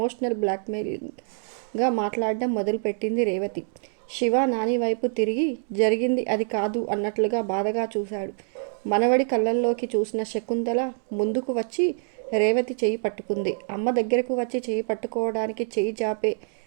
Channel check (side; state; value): left; silent; 61 dB below the other